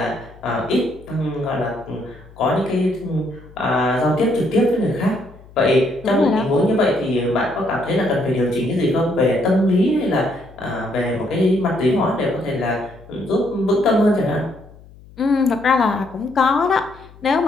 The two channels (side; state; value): left; noise; hum, 22 dB below the sound